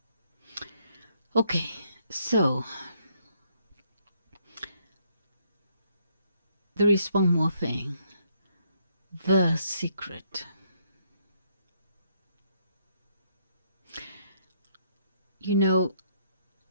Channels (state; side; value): inverted; both; correlation -0.72